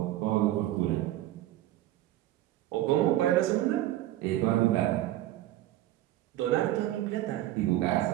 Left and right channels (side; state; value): left; quieter; 14.5 dB